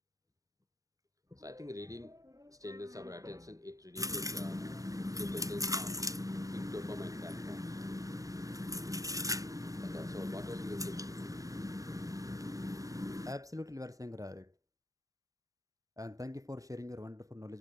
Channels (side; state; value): left; late; 0.16 ms